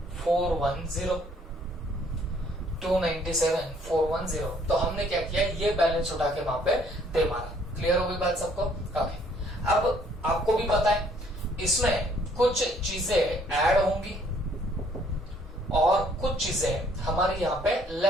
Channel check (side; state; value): both; normal; correlation 0.63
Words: 297,410। तो हमने क्या किया, ये बैलेंस उठा के वहां पे दे मारा। क्लियर हो गई बात सबको? ओके, अब आपको भी पता है इसमें कुछ चीजें ऐड होंगी और कुछ चीजें हमारी यहाँ पे